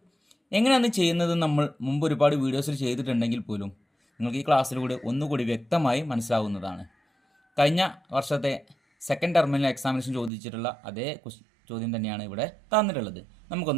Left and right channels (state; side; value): drops out; left; at 10.3 s